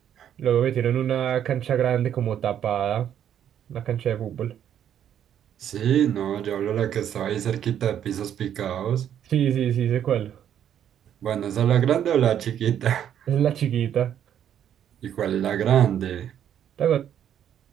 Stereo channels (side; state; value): left; quieter; 9.8 dB